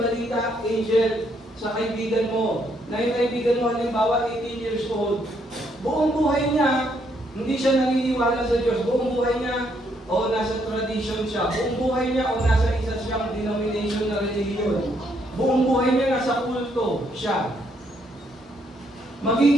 Angel, sa kaibigan mo. Na yung kaibigan mo, halimbawa, 18 years old. Buong buhay niya, hindi siya naniniwala sa Diyos. Buong buhay niya, o nasa tradition siya. Buong buhay niya, o nasa isa siyang denomination na religion. Buong buhay niya, nasa kulto siya.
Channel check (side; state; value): both; normal; correlation 0.73